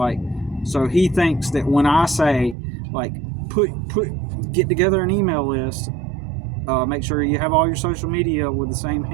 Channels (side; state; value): left; drops out; at 2.6 s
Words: so he thinks that when I say like get together an email list, make sure you have all your social media with the same